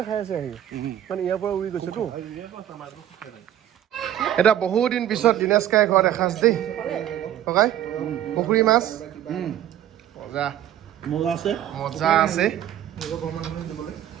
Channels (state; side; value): quieter; left; 11.5 dB